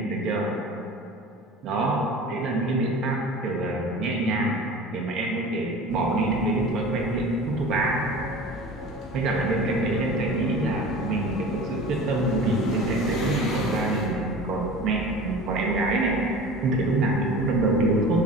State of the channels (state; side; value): normal; both; correlation 0.37